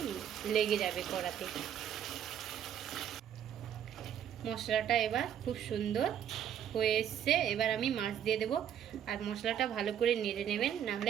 লেগে যাবে কড়াতে। মশলাটা এবার খুব সুন্দর হয়ে এসছে। এবার আমি মাছ দিয়ে দেব। আর মশলাটা ভালো করে নেড়ে নেবেন, না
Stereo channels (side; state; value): left; quieter; 9.5 dB